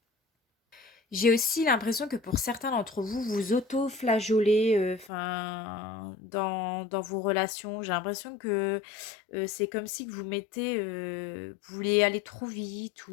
J'ai aussi l'impression que pour certains d'entre vous, vous auto-flageolez, enfin, dans vos relations. J'ai l'impression que c'est comme si que vous mettez, vous voulez aller trop vite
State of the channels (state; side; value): drops out; right; at 5.1 s